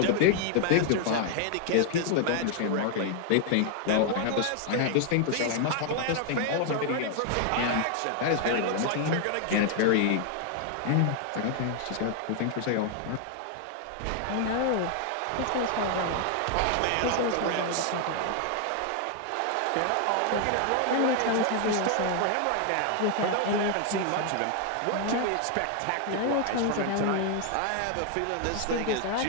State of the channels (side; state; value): both; different; correlation 0.00